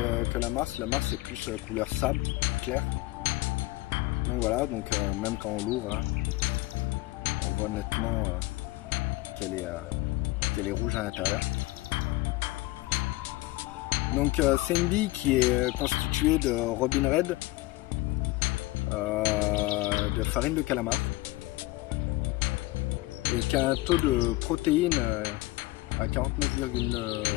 la Mars. La Mars c'est plus couleur sable, clair. Donc voilà, donc même quand on l'ouvre, hein, on voit nettement qu'elle est rouge à l'intérieur. Donc c'est une bille qui est constituée de Robin Red, de farine de calamar, et qui a un taux de protéines à 49,5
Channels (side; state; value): right; quieter; 20.2 dB